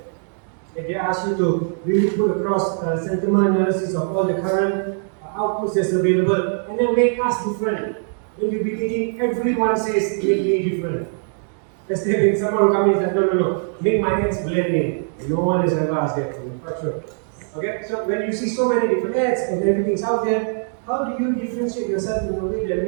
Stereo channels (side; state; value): left; silent; 58 dB below the other